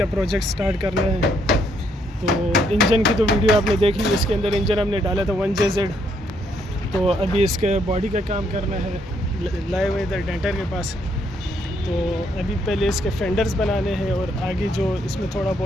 प्रोजेक्ट स्टार्ट करना है। तो इंजन की तो वीडियो आपने देख ली, इसके अंदर इंजन हमने डाला था 1JZ। तो अभी इसके बॉडी का काम करना है, लाए हुए इधर डेंटर के पास। तो अभी पहले इसके फेंडर्स बनाने हैं और आगे जो इसमें थोड़ा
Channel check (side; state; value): both; normal; correlation 0.72